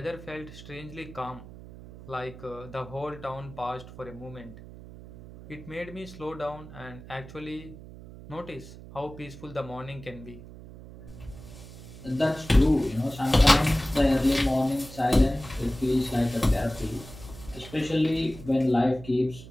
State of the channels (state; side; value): noise; right; hum, 16 dB below the sound